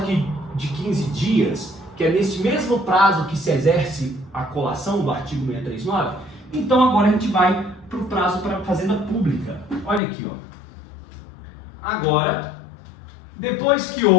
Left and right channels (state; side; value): drops out; right; at 10.0 s